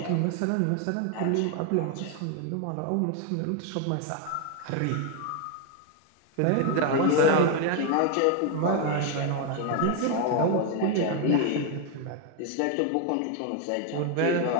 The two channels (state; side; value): different; both; correlation 0.01